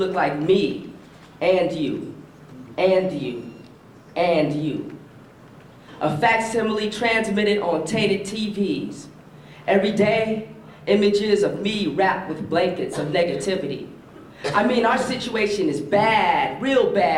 like me, and you, and you, and you. A facsimile transmitted on tainted TVs. Every day, images of me wrapped with blankets of negativity. I mean, our situation is bad, real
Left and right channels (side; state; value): both; identical; correlation 1.00